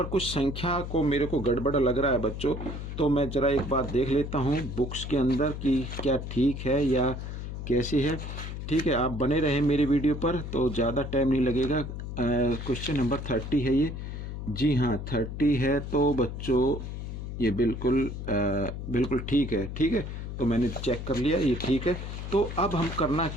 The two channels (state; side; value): noise; left; hum, 7 dB below the sound